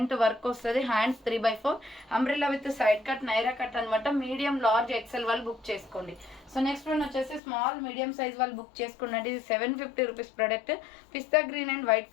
work వస్తుంది. Hands 3/4 umbrella with side cut Naira cut అనమాట. మీడియం లార్జ్ ఎక్సెల్ వాళ్ళు బుక్ చేసుకోండి. సో నెక్స్ట్ వన్ వచ్చేసి స్మాల్ మీడియం సైజ్ వాళ్ళు బుక్ చేసుకున్నది. ఇది 750 rupees product. Pista green and white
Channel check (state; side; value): drops out; right; at 7.4 s